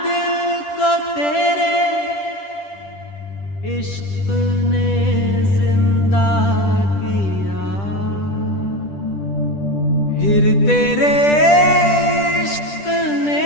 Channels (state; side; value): late; right; 10 ms